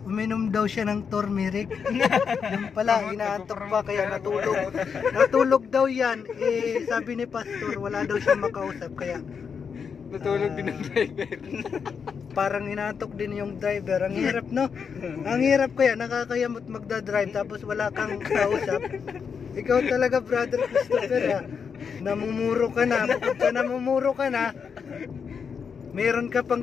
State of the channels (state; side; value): quieter; right; 6.4 dB